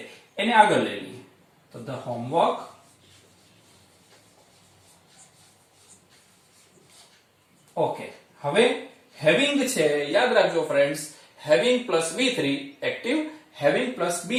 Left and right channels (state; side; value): identical; both; correlation 1.00